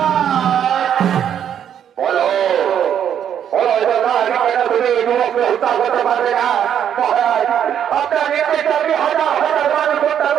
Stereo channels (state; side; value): quieter; left; 9.2 dB